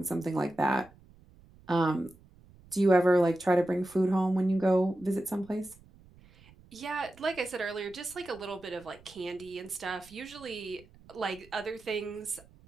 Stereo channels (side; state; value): right; noise; rumble, 25 dB below the sound